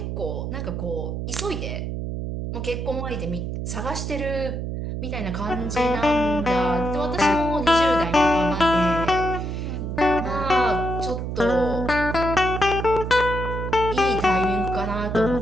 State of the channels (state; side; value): noise; right; hum, 4 dB below the sound